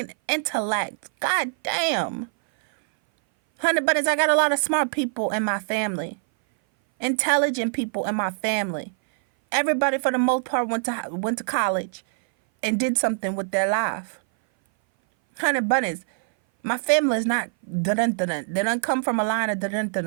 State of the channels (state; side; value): silent; left; 59 dB below the other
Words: intellect. God damn. Honey bunnies, I got a lot of smart people in my family. Intelligent people in my family. Everybody for the most part went to college and did something with their life. Honey bunnies, my family is not dun-dun-dun-dun. They don't come from a line of